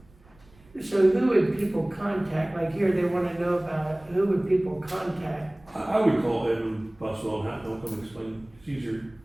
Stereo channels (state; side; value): noise; right; rumble, 28 dB below the sound